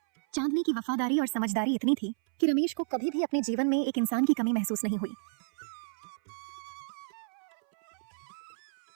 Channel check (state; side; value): silent; left; 57 dB below the other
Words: चांदनी की वफादारी और समझदारी इतनी थी कि रमेश को कभी भी अपने जीवन में एक इंसान की कमी महसूस नहीं हुई।